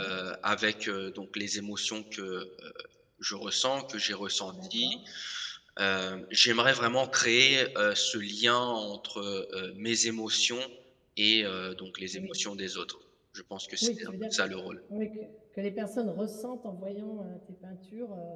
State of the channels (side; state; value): both; identical; correlation 1.00